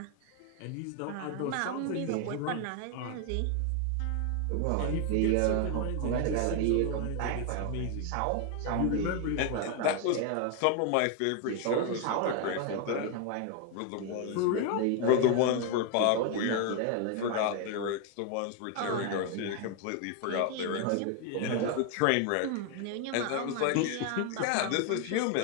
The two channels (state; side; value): different; both; correlation 0.01